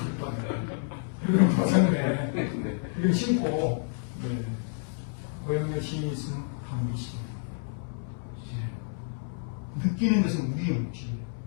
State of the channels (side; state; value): right; silent; 58 dB below the other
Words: 이런 벗었네. 이거 신고, 네. 고영렬 시인이 쓴 방비시. 느끼는 것은 우리의 묵시예요.